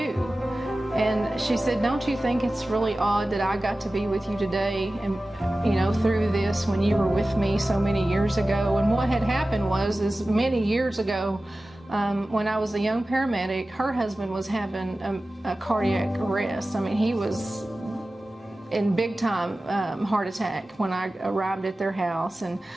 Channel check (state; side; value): normal; both; correlation 0.96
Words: And she said, don't you think it's really odd that I got to be with you today and, through this when you were with me so many years ago? And what had happened is many years ago, when I was a young paramedic, her husband was having a cardiac arrest. I mean, he was in big time heart attack when I arrived at their house, and